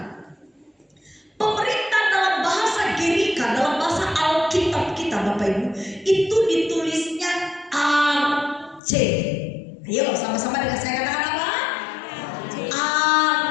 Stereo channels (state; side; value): drops out; right; at 8.8 s